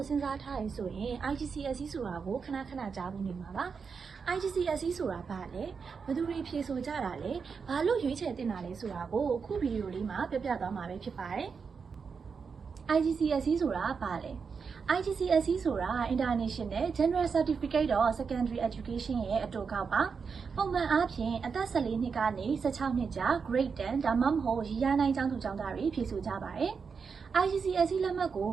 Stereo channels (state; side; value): quieter; left; 5.6 dB